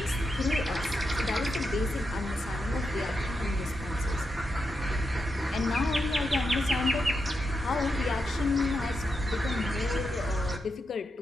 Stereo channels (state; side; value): normal; both; correlation 0.85